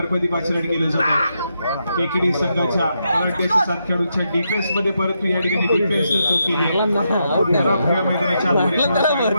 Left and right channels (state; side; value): inverted; both; correlation -0.82